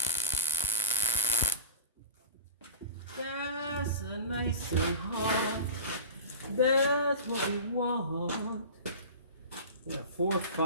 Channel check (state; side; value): inverted; both; correlation -0.31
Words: That's a nice and hot. That's what we want. Yeah, 4,